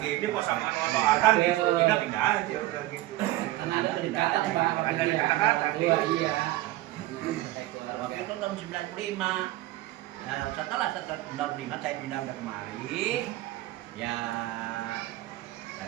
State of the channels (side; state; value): left; quieter; 16.8 dB